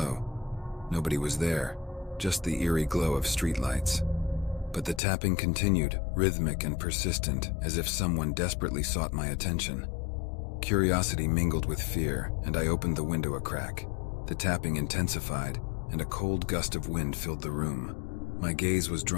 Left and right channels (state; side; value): drops out; right; at 5.0 s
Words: Nobody was there, just the eerie glow of streetlights. But the tapping continued, rhythmic and persistent, as if someone desperately sought my attention. Curiosity mingled with fear, and I opened the window a crack. The tapping intensified, and a cold gust of wind filled the room. My gaze was